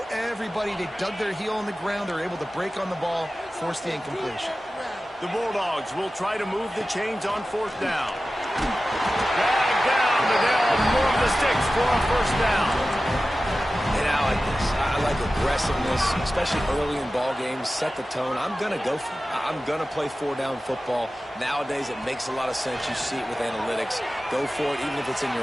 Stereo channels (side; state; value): both; normal; correlation 0.95